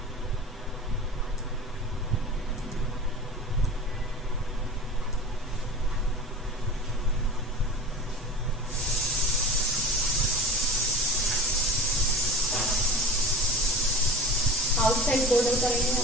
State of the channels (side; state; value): both; normal; correlation 0.38